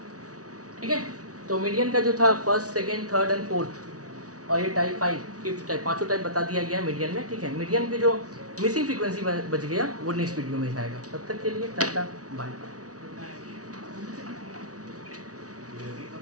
ठीक है, तो मीडियन का जो था first second third and fourth, और ये टाइप 5 फिफ्थ टाइप, पांचों टाइप बता दिया गया मीडियन में। ठीक है, मीडियन पे जो मिसिंग फ्रीक्वेंसी बच गया वो नेक्स्ट वीडियो में जाएगा। तब तक के लिए टाटा बाय।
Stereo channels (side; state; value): left; late; 0.67 ms